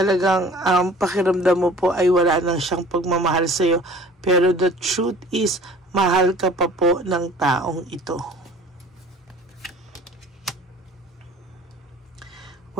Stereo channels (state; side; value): normal; both; correlation 0.47